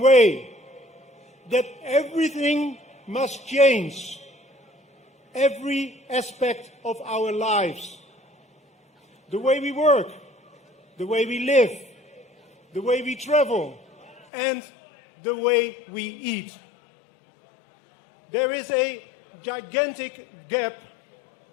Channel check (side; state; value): right; drops out; at 14.2 s